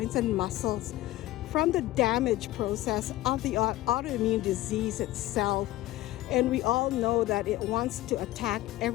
and muscles from the damage process of the autoimmune disease itself. And we all know that it wants to attack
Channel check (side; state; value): right; quieter; 16.5 dB